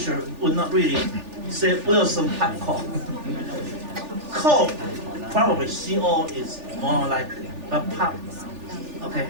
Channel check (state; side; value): late; left; 3.4 ms